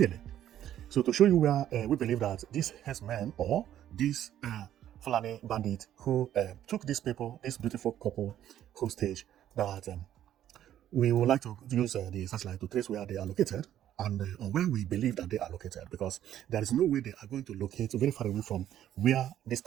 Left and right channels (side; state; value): left; quieter; 11.5 dB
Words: So to show you where we believe that these herdsmen or these Fulani bandit who took these people, this beautiful couple hostage, that we would like to use the satellite to trace where they are located and where we believe that they are located, because there is no way they are going to locate very far away from where this